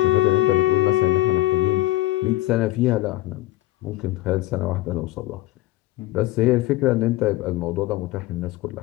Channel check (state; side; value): quieter; right; 16.9 dB